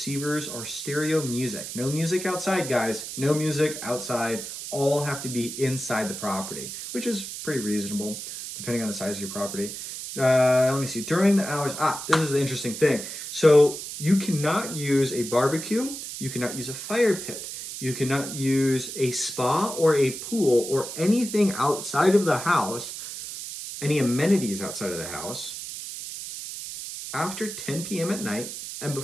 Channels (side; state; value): right; noise; hiss, 8 dB below the sound